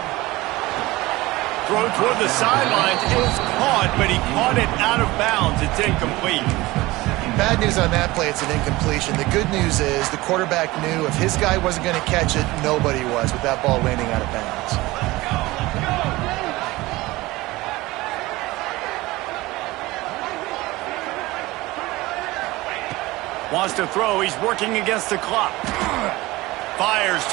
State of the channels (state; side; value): quieter; left; 19.8 dB